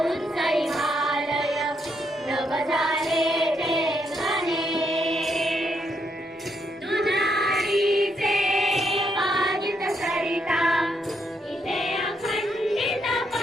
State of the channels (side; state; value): both; normal; correlation 0.77